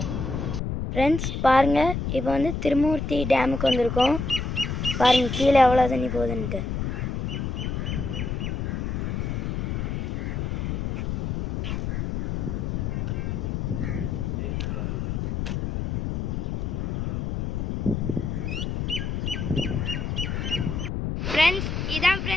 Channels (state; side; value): noise; left; rumble, 2 dB below the sound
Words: फ्रेंड्स பாருங்க இப்போ வந்து திருமூர்த்தி டேமுக்கு வந்திருக்கோம். பாருங்க கீழே எவ்வளவு தண்ணி போகுதுன்னு. फ्रेंड्स इधर